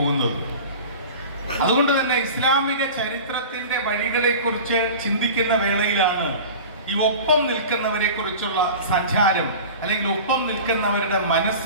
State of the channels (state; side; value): inverted; both; correlation -0.36